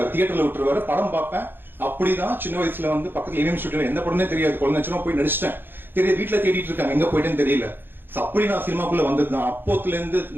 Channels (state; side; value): late; left; 0.099 ms